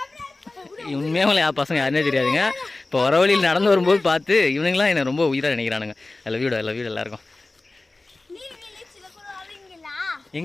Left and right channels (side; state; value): right; quieter; 3.1 dB